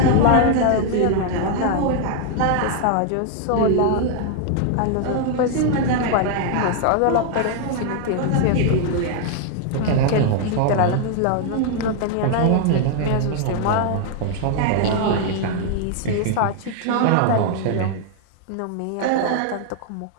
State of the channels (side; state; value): both; different; correlation 0.00